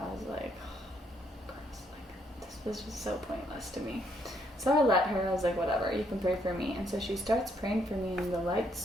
was like, oh, gross. Like, this was just so pointless to me. So I let her. I was like, whatever, you can pray for me. And so she starts praying for me, and the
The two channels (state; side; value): normal; both; correlation 0.72